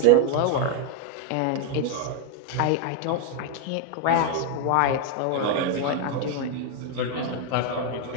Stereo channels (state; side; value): different; both; correlation 0.01